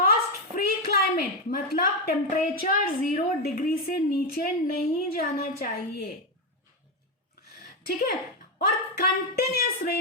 free climate. मतलब टेम्परेचर 0 डिग्री से नीचे नहीं जाना चाहिए. ठीक है, और continuous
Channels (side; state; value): both; normal; correlation 0.06